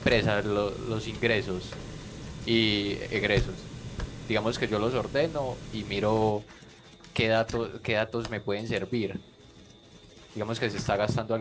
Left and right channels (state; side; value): identical; both; correlation 1.00